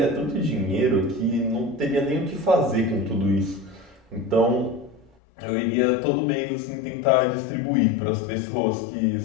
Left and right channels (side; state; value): right; drops out; at 5.1 s